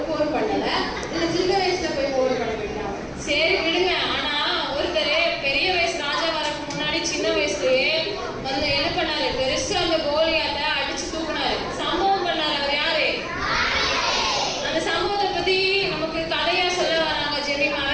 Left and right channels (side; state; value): both; identical; correlation 1.00